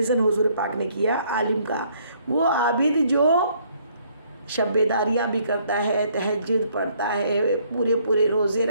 حضور پاک نے کیا عالم کا، وہ عابد جو شب بیداریاں بھی کرتا ہے، تہجد پڑھتا ہے، پورے روزے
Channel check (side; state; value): both; inverted; correlation -0.65